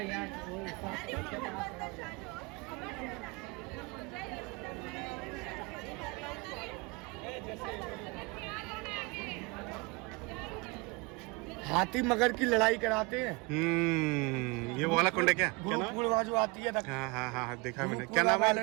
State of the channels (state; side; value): quieter; left; 27.4 dB